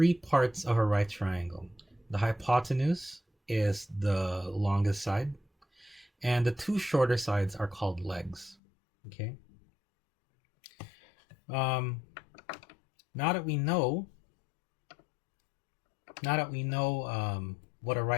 parts of a right triangle. The hypotenuse is the longest side, and the two shorter sides are called legs, okay? Now that we know what a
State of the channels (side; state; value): right; drops out; at 8.6 s